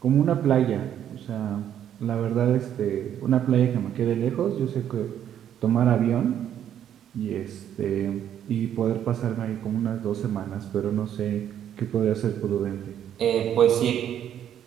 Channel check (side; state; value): left; quieter; 10.1 dB